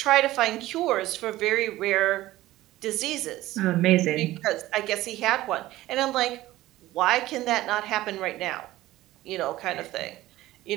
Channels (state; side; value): quieter; left; 16.4 dB